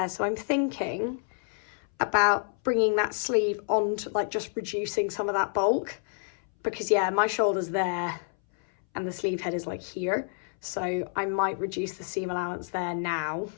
So I'm thinking about bringing that sleeve on to like just reducing some of that bulk. Because yeah, my shoulder's there and the sleeve head is like here. So I might reduce the seam allowance there now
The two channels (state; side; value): silent; right; 59 dB below the other